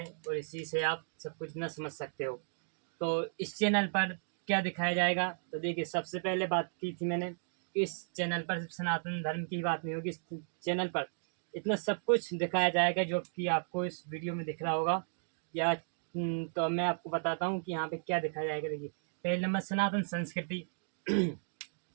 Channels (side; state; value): left; silent; digital silence